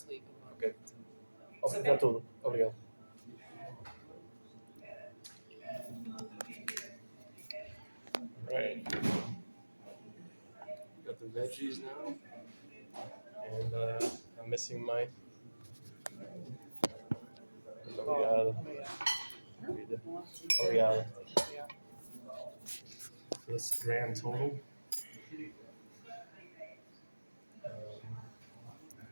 leave. Ok. Obrigado tudo. Obrigado. Right. Got the veggies now. And I'm missing my. Obrigado. Obrigado. So that's the grand total.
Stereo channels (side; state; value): both; inverted; correlation -1.00